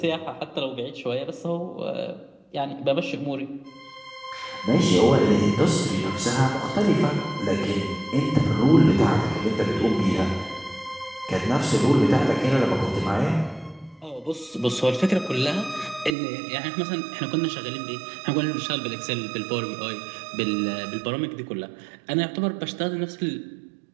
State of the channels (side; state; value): left; drops out; at 16.1 s